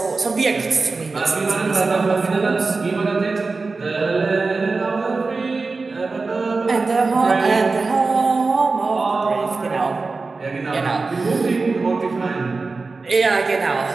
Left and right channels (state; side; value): quieter; left; 3.9 dB